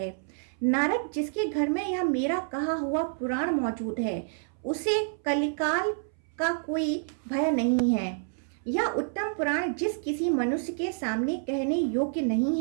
नारद, जिसके घर में यह मेरा कहा हुआ पुराण मौजूद है, उसे कलिकाल का कोई भय नहीं है। यह उत्तम पुराण जिस किसी मनुष्य के सामने कहने योग्य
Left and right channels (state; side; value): silent; left; 59 dB below the other